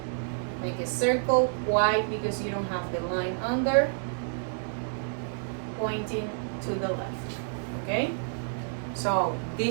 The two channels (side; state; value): left; silent; digital silence